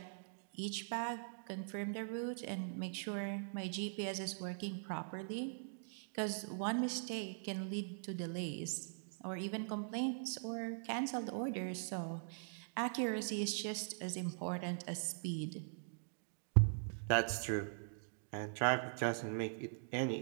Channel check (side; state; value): left; silent; digital silence